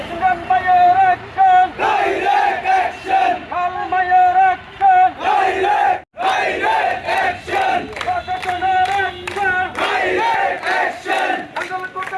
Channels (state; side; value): identical; both; correlation 1.00